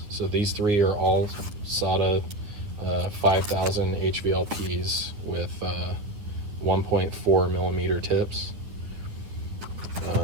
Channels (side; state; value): left; late; 9.7 ms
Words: so these three are all SATA 5000 HVLPs with 1.4 millimeter tips.